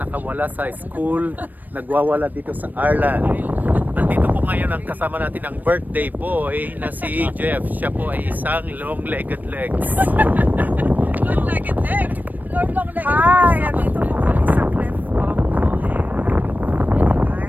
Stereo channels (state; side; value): late; left; 0.086 ms